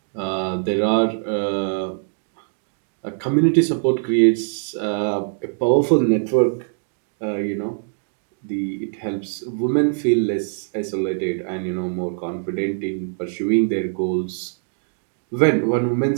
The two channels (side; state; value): left; silent; digital silence